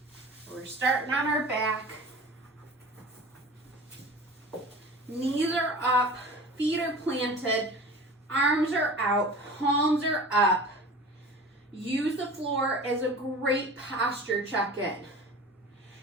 We're starting on our back. Knees are up, feet are planted, arms are out, palms are up. Use the floor as a great posture check-in.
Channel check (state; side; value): normal; both; correlation 0.38